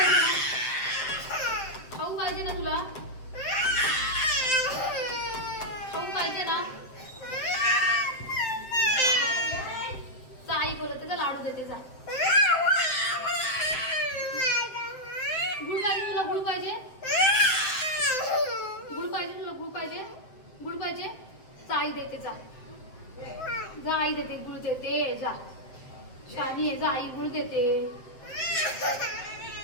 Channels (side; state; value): right; late; 7.9 ms